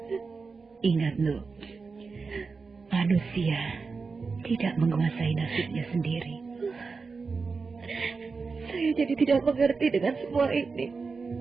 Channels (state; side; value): quieter; left; 4.6 dB